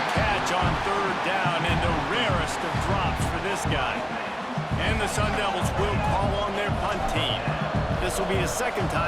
catch on third down, and the rarest of drops for this guy. And the Sun Devils will call on their punt team. This will be the second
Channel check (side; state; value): both; identical; correlation 1.00